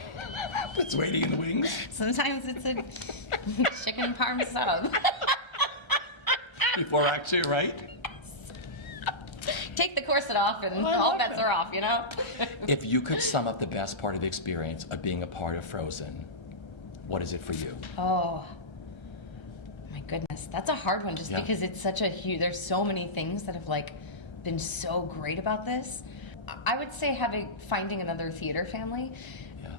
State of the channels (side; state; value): right; late; 1.3 ms